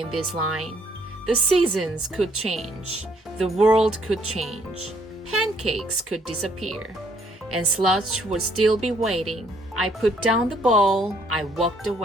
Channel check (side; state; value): both; normal; correlation 0.66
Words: this line. The seasons could change. The world could change. Pancakes could disappear. And Sludge would still be waiting. I put down the bowl. I walked